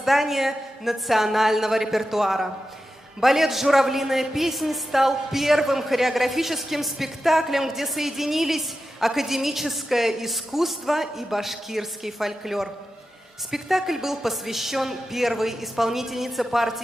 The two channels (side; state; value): both; normal; correlation 0.91